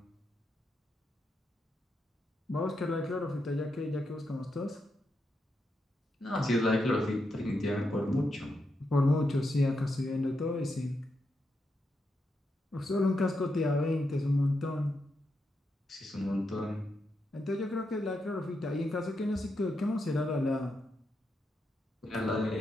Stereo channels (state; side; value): normal; both; correlation 0.84